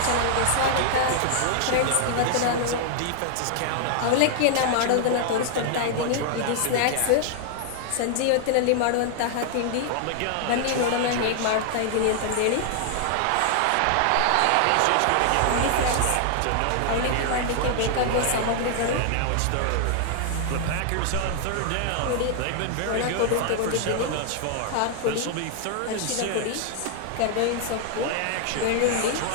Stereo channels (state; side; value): different; both; correlation 0.00